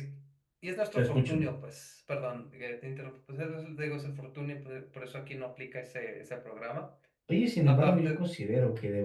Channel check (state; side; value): identical; both; correlation 1.00